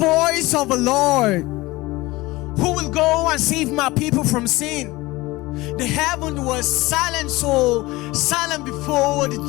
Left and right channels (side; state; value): right; quieter; 20.6 dB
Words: voice of the Lord, who will go and save my people from sin. The heaven was silent, so silent before